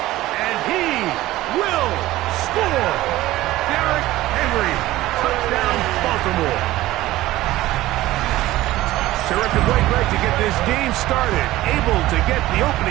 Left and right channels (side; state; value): left; quieter; 16.5 dB